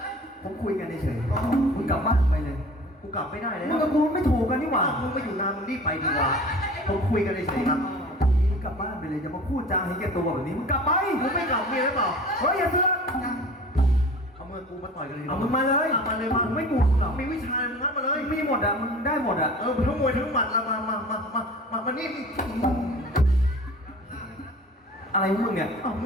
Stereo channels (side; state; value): both; normal; correlation 0.42